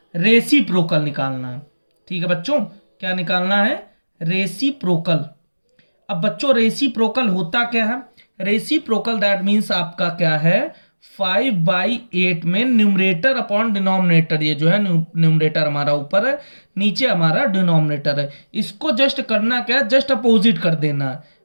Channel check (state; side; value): inverted; both; correlation -1.00